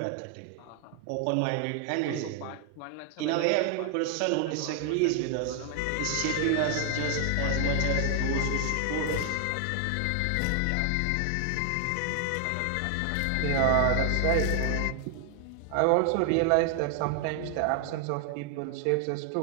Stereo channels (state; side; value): different; both; correlation 0.00